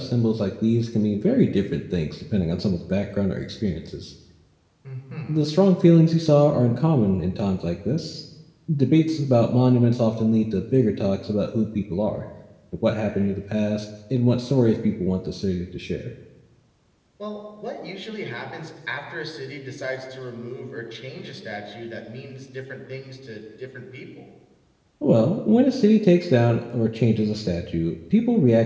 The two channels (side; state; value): both; identical; correlation 1.00